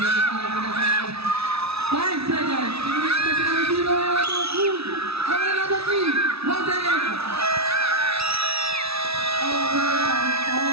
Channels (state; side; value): late; left; 0.78 ms